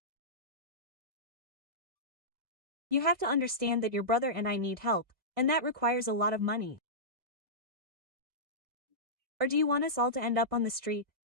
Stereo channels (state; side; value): late; left; 1.6 ms